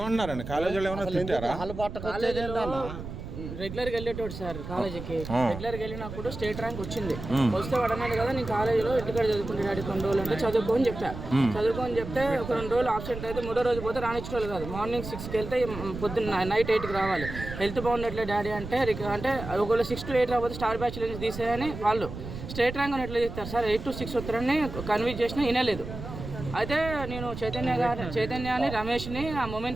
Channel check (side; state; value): right; noise; rumble, 9 dB below the sound